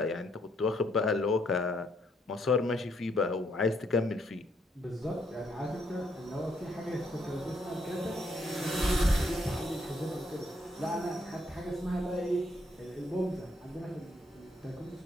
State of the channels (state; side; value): normal; both; correlation 0.72